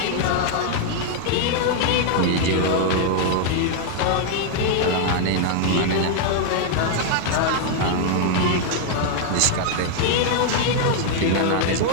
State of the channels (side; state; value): both; different; correlation 0.00